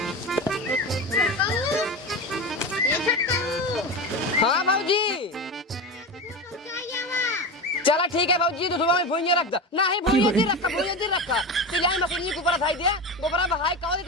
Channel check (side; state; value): both; normal; correlation 0.23